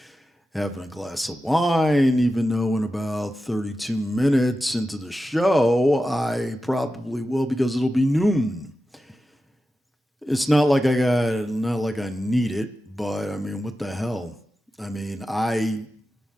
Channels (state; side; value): normal; both; correlation 0.92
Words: having a glass of wine, even though in about 32 minutes into the show, I probably will because it'll be noon. It's not like I need it, but I mean, what the hell? I mean, I